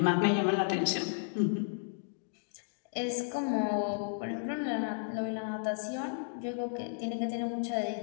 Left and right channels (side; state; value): right; silent; digital silence